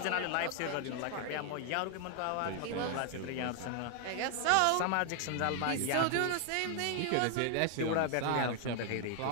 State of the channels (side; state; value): both; different; correlation 0.00